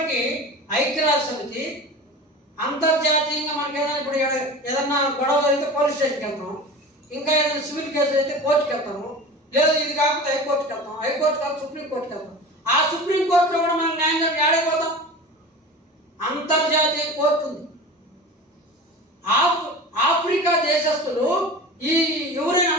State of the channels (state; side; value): normal; both; correlation 0.34